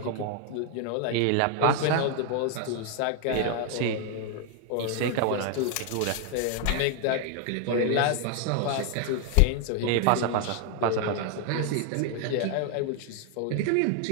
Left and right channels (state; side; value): different; both; correlation 0.00